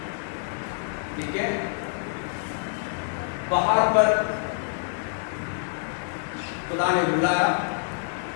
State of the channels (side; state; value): right; silent; digital silence